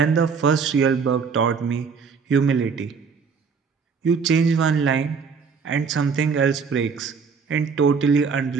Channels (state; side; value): quieter; left; 5.6 dB